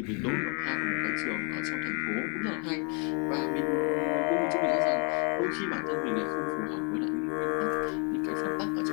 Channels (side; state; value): right; quieter; 36.1 dB